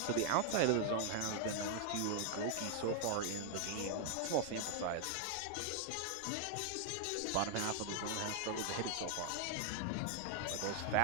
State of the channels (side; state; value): both; different; correlation 0.00